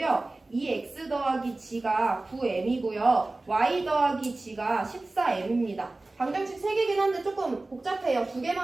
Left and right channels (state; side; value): quieter; left; 3.0 dB